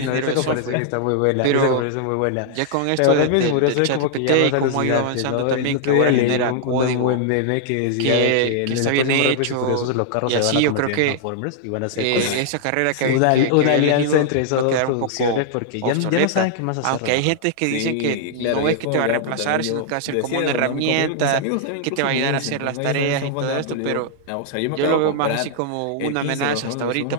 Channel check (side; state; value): both; different; correlation -0.01